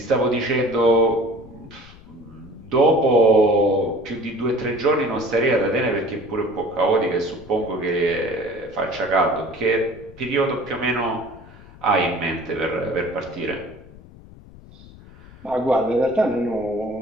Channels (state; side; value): noise; left; rumble, 21 dB below the sound